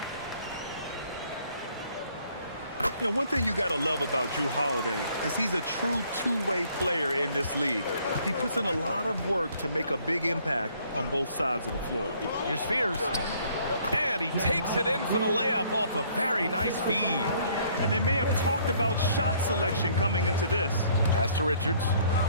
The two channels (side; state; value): both; inverted; correlation -0.62